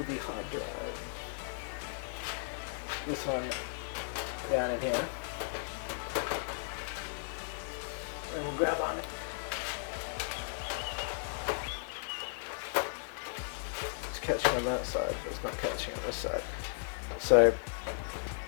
hard drive. This one down in here. And we'll grab on it. It's catching on that side, but it's not catching on this side. So,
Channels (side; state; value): right; silent; 54 dB below the other